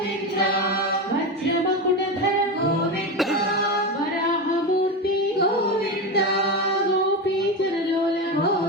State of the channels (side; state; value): both; normal; correlation 0.18